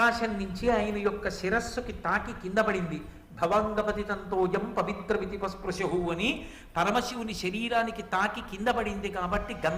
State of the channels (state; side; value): identical; both; correlation 1.00